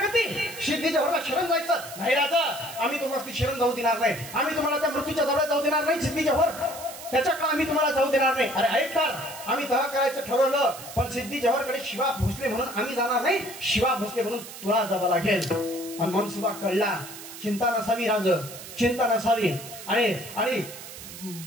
सिद्धीच्या भरला शरण जायचं. नाही राजा आम्ही तुम्हाला शरण जाऊ देणार नाही. आम्ही तुम्हाला त्या मृत्यूच्या जवळ जाऊ देणार नाही. सिद्धीच्या भर त्याच्याकडे आम्ही तुम्हाला जाऊ देणार नाही. अरे ऐक तर, आम्ही तह करायचं ठरवलं पण सिद्धी जव्हरकडे शिवा भोसले म्हणून आम्ही जाणार नाही. शिवा भोसले म्हणून तुला जावं लागेल. आणि मनसुबा कळला. चिंता नसावी राज, चिंता नसावी. आणि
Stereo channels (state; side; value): noise; right; hiss, 13 dB below the sound